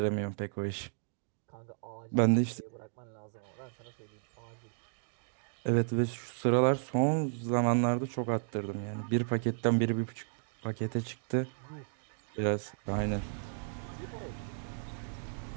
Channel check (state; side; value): silent; left; digital silence